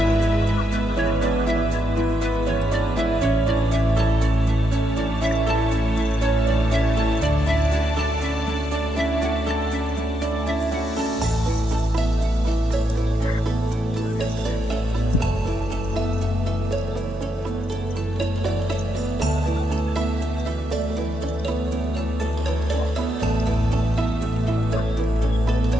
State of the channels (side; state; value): both; normal; correlation 0.80